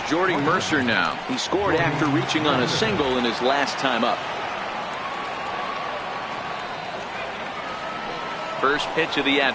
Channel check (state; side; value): identical; both; correlation 1.00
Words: Jordy Mercer now. He scored after reaching on a single in his last time up. First pitch of the